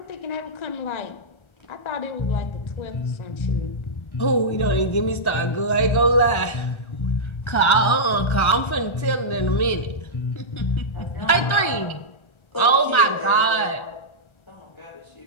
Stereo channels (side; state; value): right; late; 1.3 ms